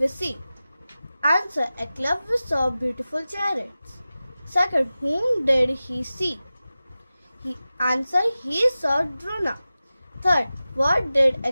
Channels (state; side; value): inverted; both; correlation -0.95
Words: see? Answer, Eklavya saw beautiful chariots. Second, whom did he see? Answer, he saw Drona. Third, what did